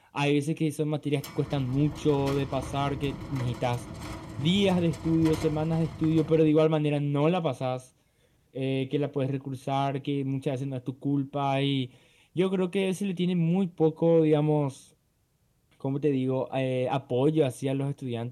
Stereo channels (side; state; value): both; identical; correlation 1.00